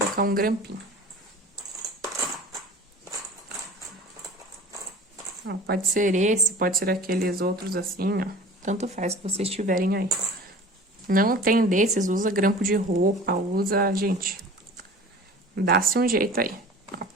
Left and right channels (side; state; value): both; normal; correlation 0.41